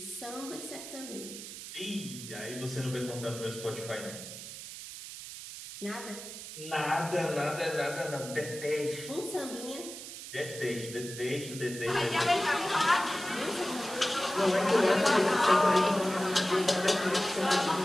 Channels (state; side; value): noise; right; hiss, 11 dB below the sound